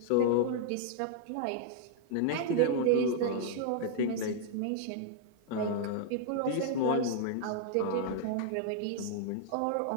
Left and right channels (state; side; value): different; both; correlation 0.00